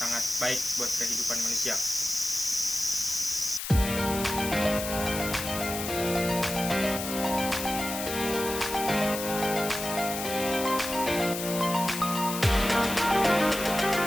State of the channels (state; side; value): noise; left; hiss, 6 dB below the sound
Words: baik buat kehidupan manusia.